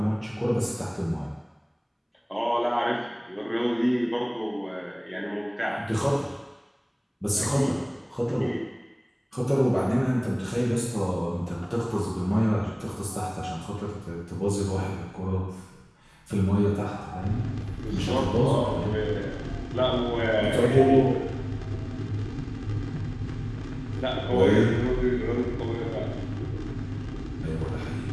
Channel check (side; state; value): both; identical; correlation 1.00